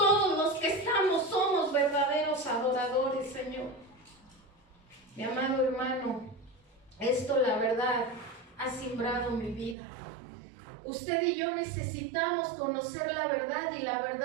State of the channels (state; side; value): drops out; left; at 9.8 s